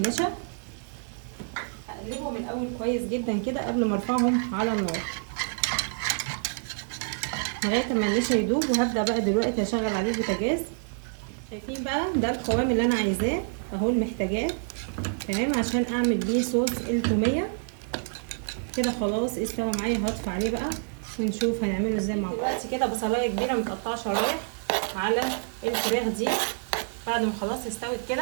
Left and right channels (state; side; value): silent; left; 60 dB below the other